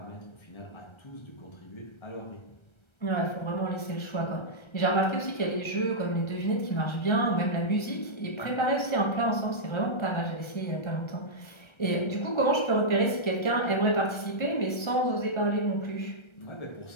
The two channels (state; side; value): late; right; 1.3 ms